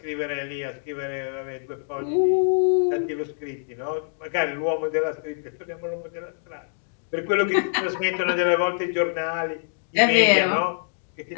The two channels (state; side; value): silent; right; digital silence